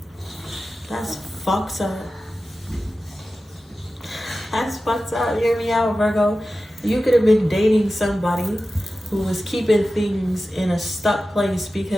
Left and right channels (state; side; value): normal; both; correlation 0.94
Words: That's fucked up. That's fucked up. Hear me out, Virgo. You could have been dating somebody who was keeping things in a stuck place